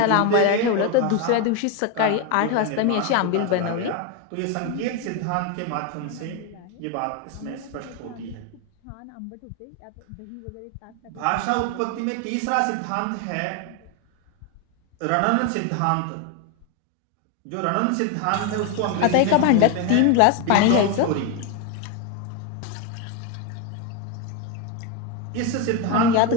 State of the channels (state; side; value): different; both; correlation 0.02